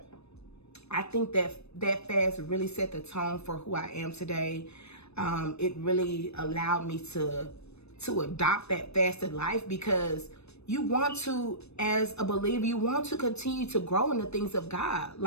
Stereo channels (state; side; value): late; right; 0.80 ms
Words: I think that fast really set the tone for who I am today. It really allowed me to adopt that fasted life, because you want to, as a believer, you want to continue to grow in the things of God.